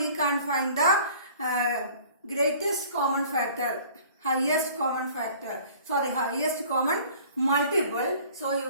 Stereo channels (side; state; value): both; inverted; correlation -0.50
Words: can find the greatest common factor, highest common factor. Sorry, highest common multiple. So you